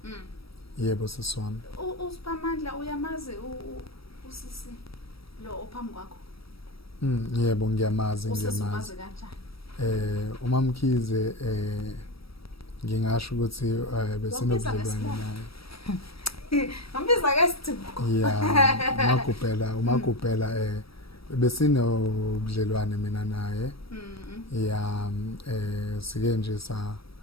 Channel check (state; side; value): late; right; 0.76 ms